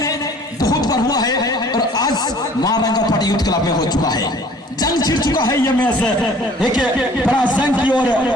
बहुत बार हुआ है और आज महारंगा पार्टी यूथ क्लब में हो चुका है। जंग छिड़ चुका है ये मैच एक बड़ा जंग की ओर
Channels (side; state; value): both; normal; correlation 0.52